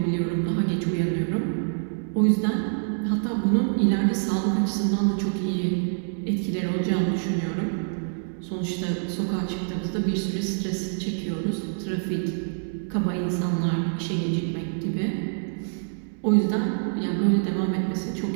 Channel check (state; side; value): silent; left; digital silence